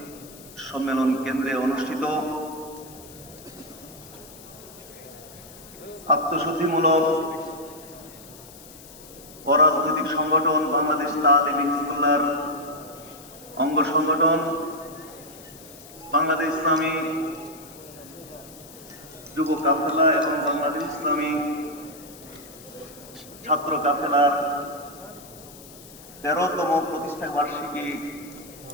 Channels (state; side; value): noise; left; hiss, 19 dB below the sound